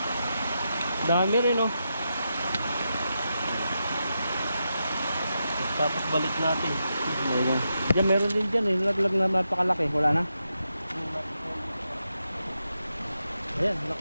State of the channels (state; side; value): inverted; both; correlation -0.86